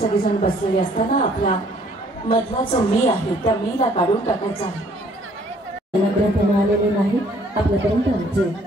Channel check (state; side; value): normal; both; correlation 0.61